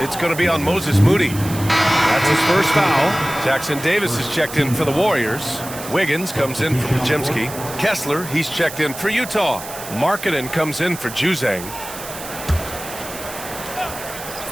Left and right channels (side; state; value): right; noise; hiss, 12 dB below the sound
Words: It's going to be on Moses Moody. That's his first foul. Jackson Davis is checked in for the Warriors. Wiggins comes in for Podziemski. Kessler, he's checked in for Utah. Markkanen comes in for Juzang.